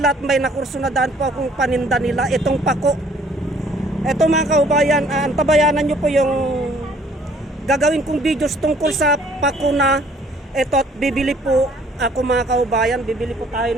at may nakurso na daan po akong paninda nila. Itong pako. Ito mga kaubayan, antabayanan nyo po yung gagawin kong videos tungkol sa pako na ito at bibili po ako mga kaubayan, bibili po tayo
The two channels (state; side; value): normal; both; correlation 0.59